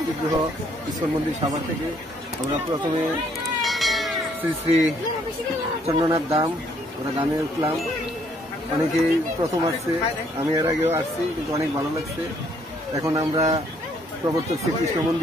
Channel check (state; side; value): normal; both; correlation 0.66